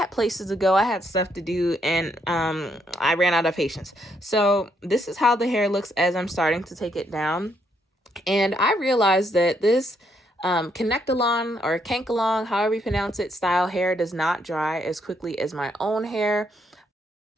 places to go, I had stuff to do, and I ran out of patience. So this is how the hair looks as I'm starting to take it down. And I realized that this connect-along or cank-along, however you pronounce it, style hair does not dry as quickly as my own hair.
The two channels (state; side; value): normal; both; correlation 0.74